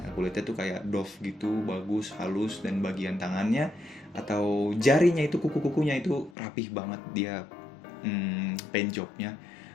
Kulitnya tuh kayak doff gitu, bagus, halus, dan bagian tangannya atau jarinya itu, kuku-kukunya itu rapih banget. Dia paint jobnya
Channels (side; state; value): right; drops out; at 6.4 s